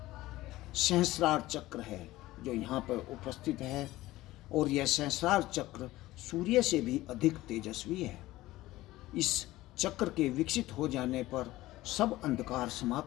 सहस्रार चक्र है, जो यहाँ पर उपस्थित है, और यह सहस्रार चक्र सूर्य से भी अधिक तेजस्वी है। इस चक्र के विकसित हो जाने पर सब अंधकार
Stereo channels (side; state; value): right; quieter; 17.1 dB